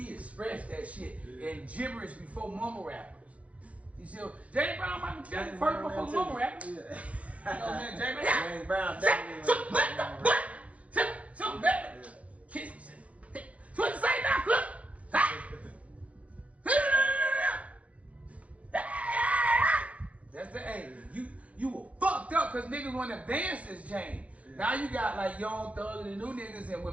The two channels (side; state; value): left; late; 0.066 ms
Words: expressed that shit in gibberish before mumble rappers. You see, James Brown, Michael Jackson, first before mumble rappers. You know what I'm saying? James Brown definitely. Something better. Kiss me. So what you say now, Cook? That's the A. You were fucked up because niggas want to advance this game. Now you got like Young Thug and the new niggas, and